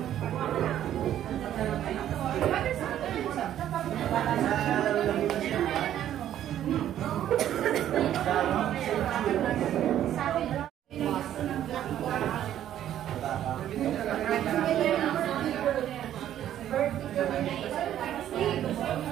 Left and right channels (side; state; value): left; quieter; 11.3 dB